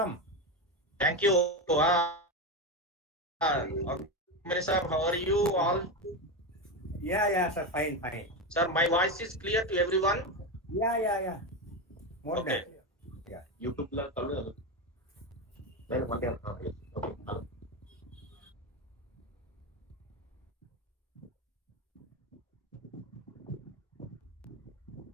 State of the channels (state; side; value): normal; both; correlation 0.15